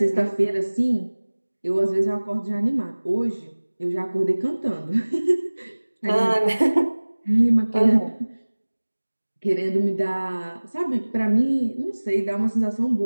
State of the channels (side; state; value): both; inverted; correlation -1.00